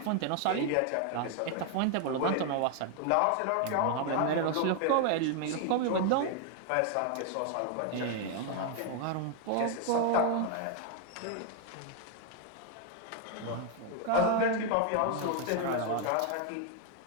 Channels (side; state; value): both; different; correlation 0.01